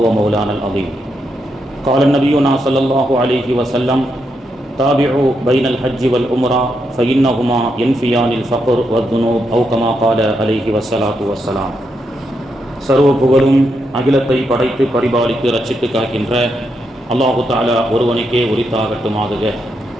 ومولانا العظيم قال النبينا صلى الله عليه وسلم تابعوا بين الحج والعمرة فإنهما ينفيان الفقر والذنوب أو كما قال عليه والصلاة والسلام. சர்வ புகழும் அகிலத்தை படைத்து பரிபாலித்து ரட்சித்து காக்கின்ற அல்லாஹு தஆலா ஒருவனுக்கே உரித்தாகட்டுமாக.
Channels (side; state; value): both; normal; correlation 0.81